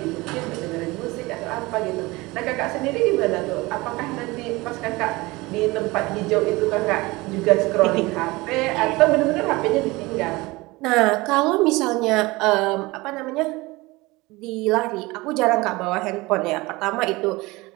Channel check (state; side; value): quieter; left; 22.0 dB